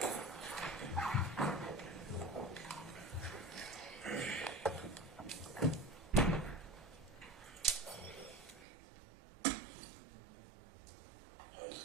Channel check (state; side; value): drops out; left; at 8.7 s